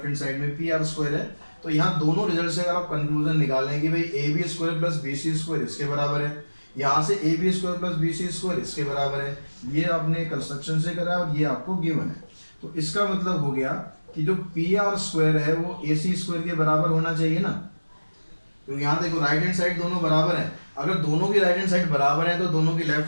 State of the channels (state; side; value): inverted; both; correlation -1.00